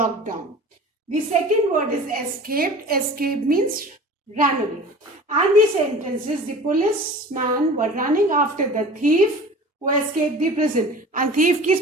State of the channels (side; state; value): both; normal; correlation 0.40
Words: The second word is escaped. Escape means ran away. And the sentence is, the policeman were running after the thief who escaped the prison. And thief की